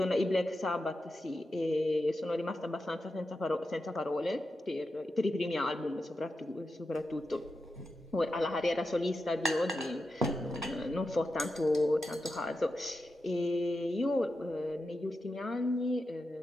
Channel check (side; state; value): both; normal; correlation 0.89